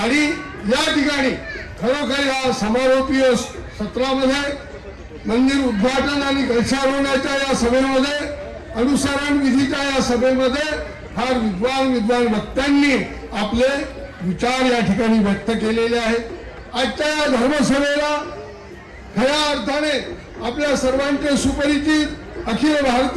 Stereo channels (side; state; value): both; identical; correlation 1.00